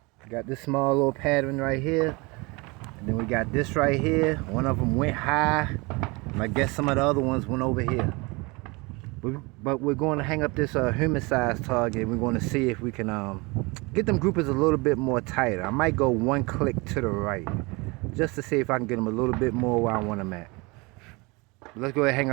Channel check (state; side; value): quieter; left; 26.3 dB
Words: Got this small little pattern right here. And then we got this right here. One of them went high. And I guess some of the other ones went over here. But we're going to hang up this human-sized target. We're going to see if we can get them groupers a little bit more tighter. I might go one click to the right. just to see if I can get them a little bit more where I want them at. Let's go ahead and hang